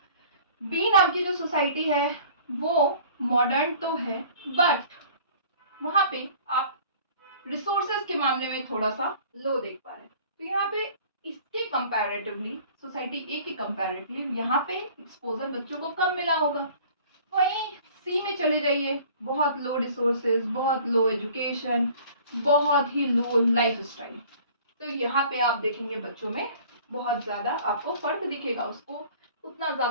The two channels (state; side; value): inverted; both; correlation -0.49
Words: बी नाम की जो सोसाइटी है वो मॉडर्न तो है, बट वहाँ पे आप रिसोर्सेज के मामले में थोड़ा सा लो देख पा रहे हैं। तो यहाँ पे इसके कंपैरेटिवली, सोसाइटी ए के कंपैरेटिवली यहाँ पे एक्सपोजर बच्चों को कम मिला होगा, वहीं सी में चले जाइए, बहुत लो रिसोर्सेज, बहुत लो एजुकेशन, बहुत ही लो लाइफ स्टाइल। तो यहाँ पे आप देखेंगे बच्चों में बहुत ज़्यादा आपको फर्क दिखेगा, उसको उतना